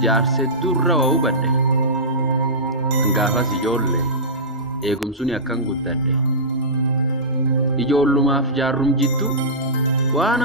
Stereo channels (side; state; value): both; normal; correlation -0.17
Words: jaarsee durra waa hubadhe hangaafas ijoollee eegumsuun akkan guddadhe ijoollumaaf jaarrum jiddu waan